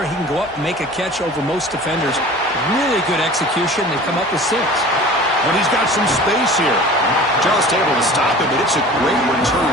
He can go up and make a catch over most defenders. Really good execution. They come up with 6. But he's got some space here. Just able to stop it, but it's a great return,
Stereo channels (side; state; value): both; normal; correlation 0.41